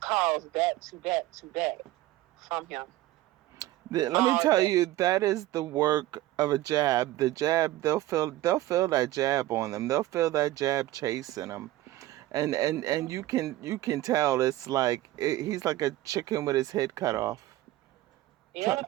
calls back to back to back from him Let me all tell day. you, that is the work of a jab. The jab, they'll feel that jab on them. They'll feel that jab chasing them, and you can tell it's like he's like a chicken with his head cut off,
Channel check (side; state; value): left; quieter; 15.9 dB